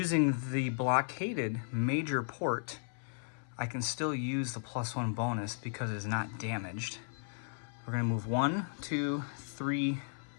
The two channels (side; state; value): right; silent; 54 dB below the other